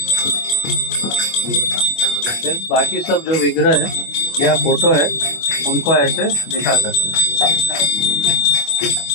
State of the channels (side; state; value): right; late; 25 ms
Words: फिर बाकी सब जो विग्रह है या फोटो है उनको ऐसे दिखा सकते हैं।